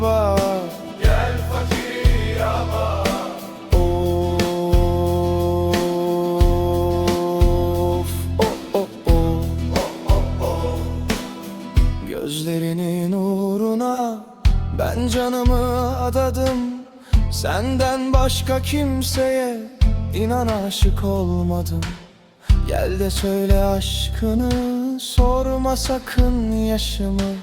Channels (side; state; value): both; identical; correlation 1.00